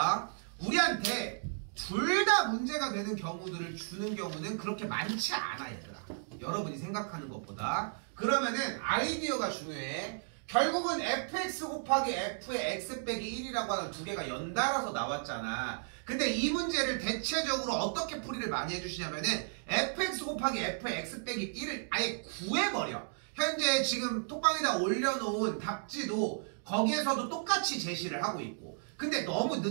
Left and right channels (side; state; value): left; silent; digital silence